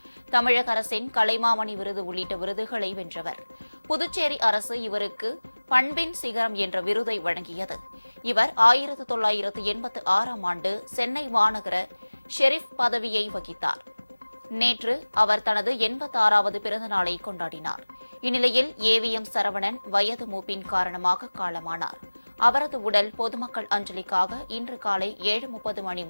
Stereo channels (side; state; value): both; inverted; correlation -1.00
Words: தமிழக அரசின் கலைமாமணி விருது உள்ளிட்ட விருதுகளை வென்றவர். புதுச்சேரி அரசு இவருக்கு பண்பின் சிகரம் என்ற விருதை வழங்கியது. இவர் 1986ஆம் ஆண்டு சென்னை மாநகர ஷெரீப் பதவியை வகித்தார். நேற்று அவர் தனது 86வது பிறந்த நாளை கொண்டாடினார். இந்நிலையில் ஏவிஎம் சரவணன் வயது மூப்பின் காரணமாக காலமானார். அவரது உடல் பொதுமக்கள் அஞ்சலிக்காக இன்று காலை 7:30 மணி